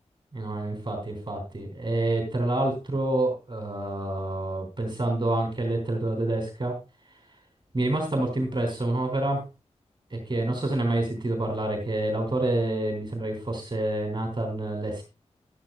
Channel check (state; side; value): normal; both; correlation 0.83